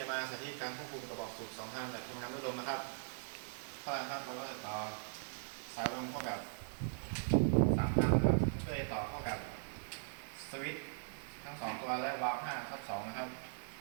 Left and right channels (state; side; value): silent; left; 51 dB below the other